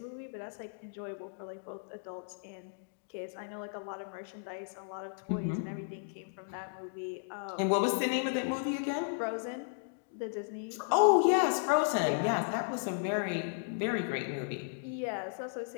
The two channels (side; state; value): right; silent; digital silence